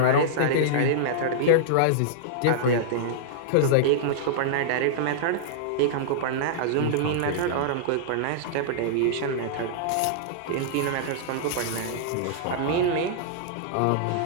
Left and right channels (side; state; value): both; different; correlation -0.02